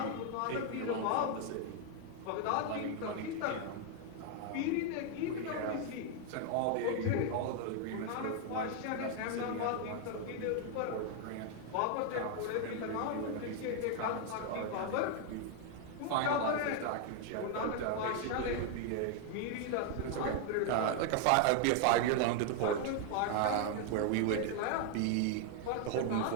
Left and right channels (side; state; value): both; different; correlation 0.00